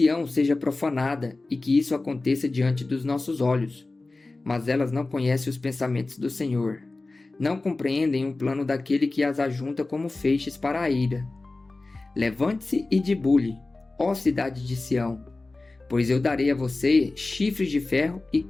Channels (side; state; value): right; quieter; 3.2 dB